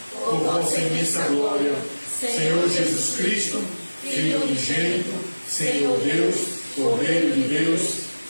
por vossa imensa glória. Senhor Jesus Cristo, Filho unigênito, Senhor Deus, Cordeiro de Deus,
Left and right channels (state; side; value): inverted; both; correlation -1.00